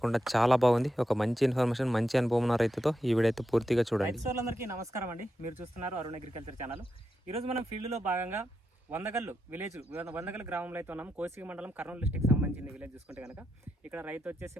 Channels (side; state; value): both; normal; correlation 0.86